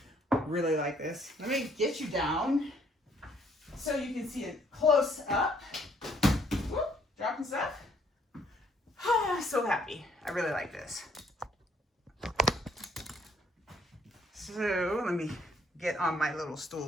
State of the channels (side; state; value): both; normal; correlation 0.66